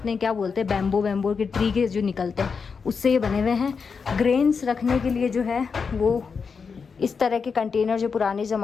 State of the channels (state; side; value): quieter; right; 5.5 dB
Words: क्या बोलते हैं, बैम्बो के ट्री के जो निकलते हैं उससे ये बने हुए हैं। ग्रेन्स रखने के लिए जो है वो इस तरह के कंटेनर जो पुराने